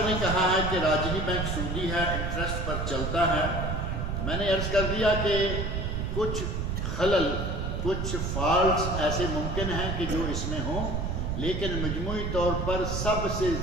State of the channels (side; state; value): right; noise; rumble, 1 dB below the sound